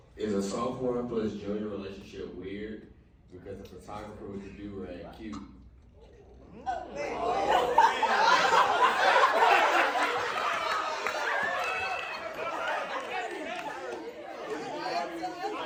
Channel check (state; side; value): identical; both; correlation 1.00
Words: Is a sophomore plus junior relationship weird because the photographer with the do-rag cute?